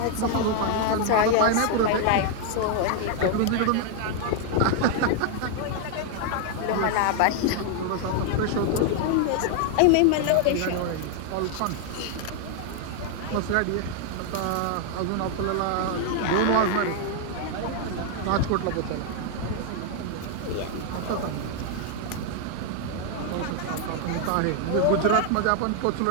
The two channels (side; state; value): both; different; correlation 0.00